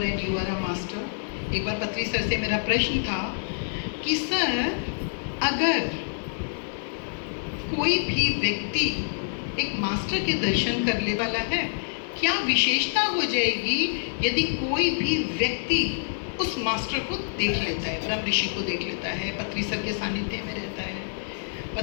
and you are a master. एक बार पत्री सर से मेरा प्रश्न था कि सर, अगर कोई भी व्यक्ति एक मास्टर के दर्शन करने वाला है, क्या विशेषता हो जाएगी यदि कोई भी व्यक्ति उस मास्टर को देख लेता है, ब्रह्म ऋषि को देख लेता है, पत्री सर के सानिध्य में रहता है?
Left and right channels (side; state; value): right; silent; 60 dB below the other